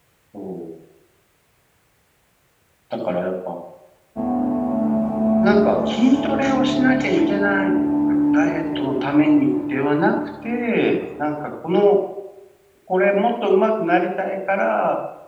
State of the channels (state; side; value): identical; both; correlation 1.00